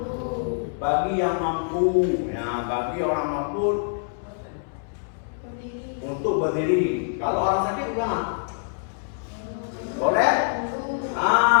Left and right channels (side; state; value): right; silent; 62 dB below the other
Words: Ya, bagi orang mampu untuk berdiri. Kalau orang sakit gimana? Boleh?